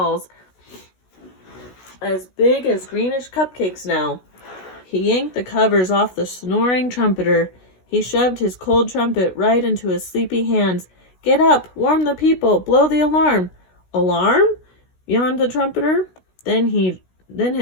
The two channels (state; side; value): late; right; 16 ms